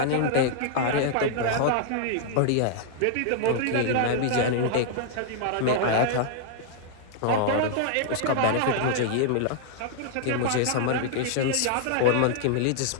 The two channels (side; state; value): both; different; correlation -0.01